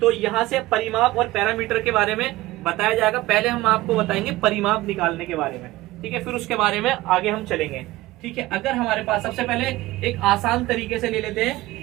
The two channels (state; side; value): quieter; left; 18.1 dB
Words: तो यहाँ से परिमाप और पैरामीटर के बारे में बताया जाएगा। पहले हम आपको बताएंगे परिमाप निकालने के बारे में, ठीक है, फिर उसके बारे में आगे हम चलेंगे, ठीक है। अगर हमारे पास, सबसे पहले एक आसान तरीके से ले लेते हैं